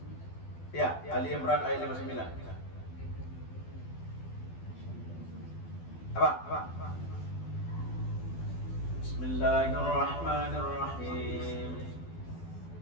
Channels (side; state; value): right; late; 12 ms